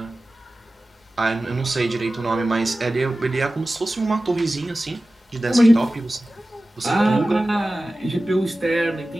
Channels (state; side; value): normal; both; correlation 0.96